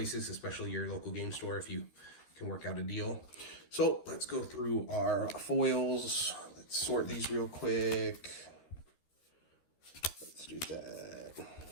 especially your local game store if you can work out a deal. So let's go through our foils. Let's sort these real quick. Let's do that.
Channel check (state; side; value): late; right; 13 ms